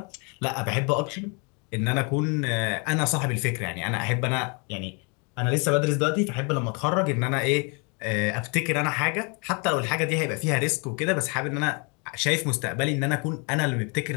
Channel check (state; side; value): quieter; right; 33.6 dB